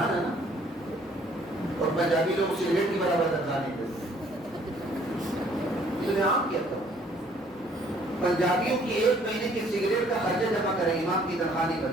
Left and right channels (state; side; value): noise; right; rumble, 30 dB below the sound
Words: ہیں نا, اور پنجابی لوگ سگریٹ کی برابر تنخواہ نہیں دیتے. یہ عام کیا تھا. پنجابیوں کی 1 مہینے کی سگریٹ کا خرچہ جمع کریں, امام کی تنخواہ نہیں